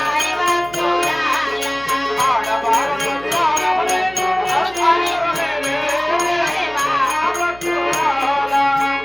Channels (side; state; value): right; noise; hum, 20 dB below the sound